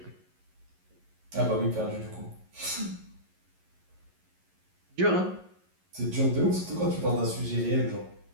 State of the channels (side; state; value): left; late; 11 ms